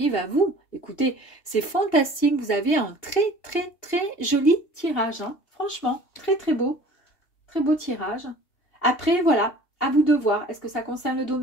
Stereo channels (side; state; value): right; late; 2.8 ms